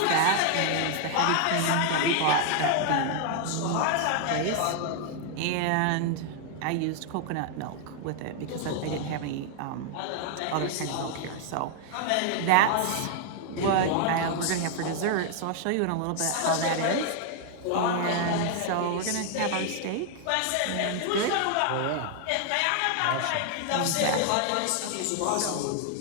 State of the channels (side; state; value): both; different; correlation 0.00